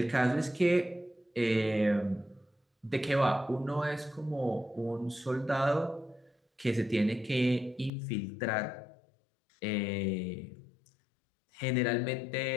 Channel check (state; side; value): drops out; right; at 7.9 s